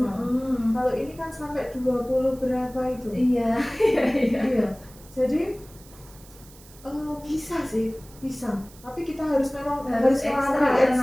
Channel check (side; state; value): right; noise; hiss, 23 dB below the sound